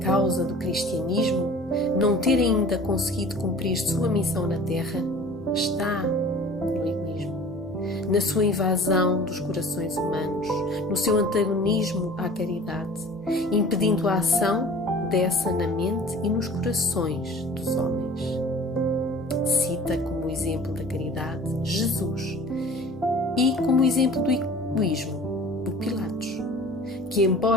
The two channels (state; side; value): normal; both; correlation 0.45